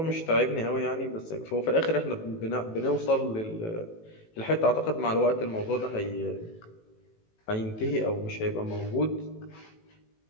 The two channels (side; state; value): right; late; 18 ms